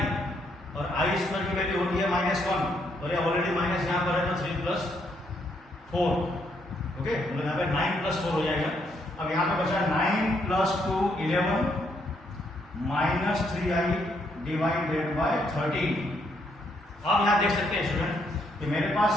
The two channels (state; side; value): normal; both; correlation 0.74